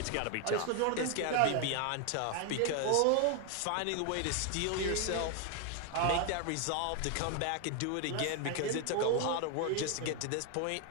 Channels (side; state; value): both; different; correlation 0.01